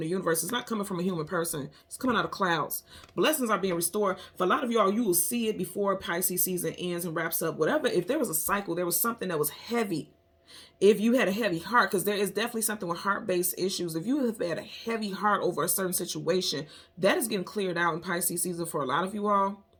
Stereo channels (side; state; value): both; identical; correlation 1.00